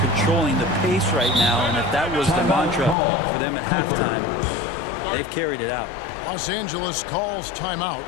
the pace right now, and if that was the mantra for them at halftime, they've carried it out. Los Angeles calls timeout.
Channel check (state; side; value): drops out; right; at 3.0 s